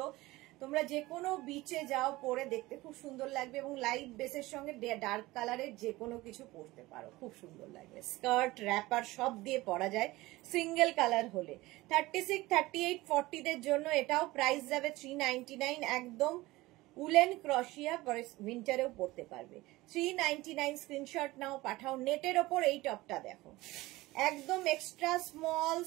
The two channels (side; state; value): left; quieter; 19.4 dB